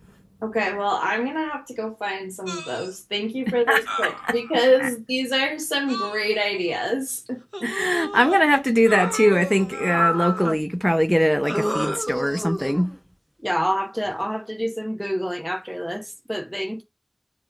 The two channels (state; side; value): identical; both; correlation 1.00